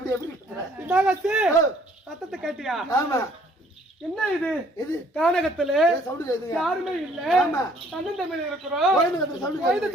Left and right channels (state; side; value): normal; both; correlation 0.60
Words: சத்தத்தை கேட்டியா? ஆமா. என்ன இது? இது கானகத்துல சவுண்ட் யாருமே இல்ல. தன்னன் தமிழ் இருக்கிறோம்.